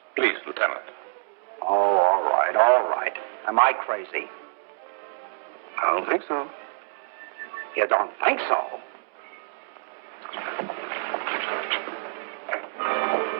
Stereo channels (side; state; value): left; silent; digital silence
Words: Please, Lieutenant. Oh, all right, all right. Am I crazy? I don't think so. You don't think so?